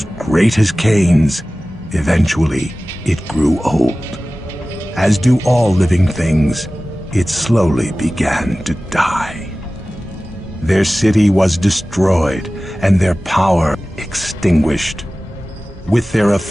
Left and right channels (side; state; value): both; normal; correlation 0.97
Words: great as Cain's, eventually it grew old. As do all living things, it slowly began to die. Their city was destroyed and their power extinguished. With their